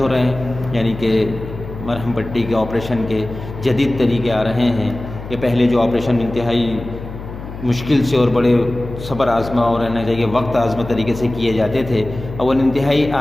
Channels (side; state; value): left; noise; hum, 11 dB below the sound